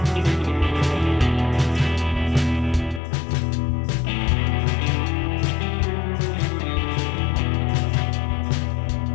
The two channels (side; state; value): right; drops out; at 3.0 s